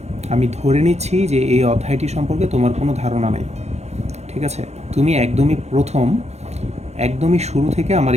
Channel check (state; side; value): late; left; 0.32 ms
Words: আমি ধরে নিচ্ছি যে এই অধ্যায়টি সম্পর্কে তোমার কোনো ধারণা নেই। ঠিক আছে, তুমি একদমই শুরু থেকে আমার